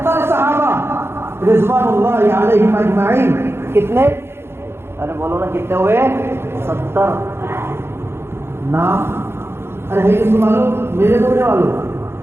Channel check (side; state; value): left; late; 0.12 ms